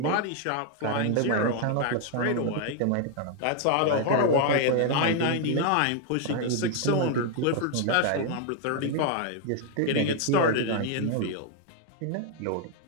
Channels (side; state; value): both; different; correlation 0.00